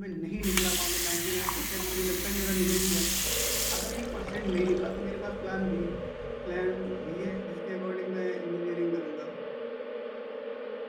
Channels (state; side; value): identical; both; correlation 1.00